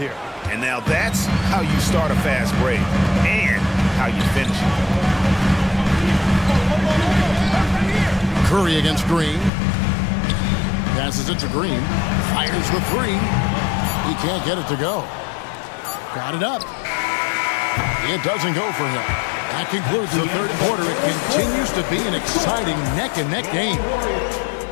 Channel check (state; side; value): drops out; right; at 9.5 s